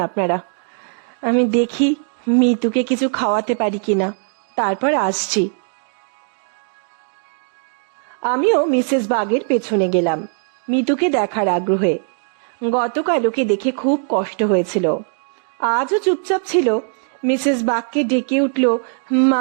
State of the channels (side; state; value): left; silent; 55 dB below the other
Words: আপনারা, আমি দেখি মিতুকে কিছু খাওয়াতে পারি কিনা, তারপর আসছি। আমিও মিসেস বাগের পেছনে গেলাম মিতুকে দেখার আগ্রহে। গতকাল ওকে দেখে খুব কষ্ট হয়েছিল, আজও চুপচাপ ছিল। মিসেস বাগকে ডেকে উঠল